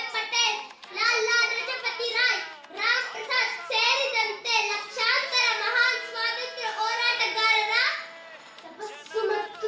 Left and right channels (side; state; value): both; identical; correlation 1.00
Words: ಪಟೇಲ್, ಲಾಲಾ ಲಜಪತಿ ರಾಯ್, ರಾಮ್ ಪ್ರಸಾದ್ ಸೇರಿದಂತೆ ಲಕ್ಷಾಂತರ ಮಹಾನ್ ಸ್ವಾತಂತ್ರ್ಯ ಹೋರಾಟಗಾರರ ತಪಸ್ಸು ಮತ್ತು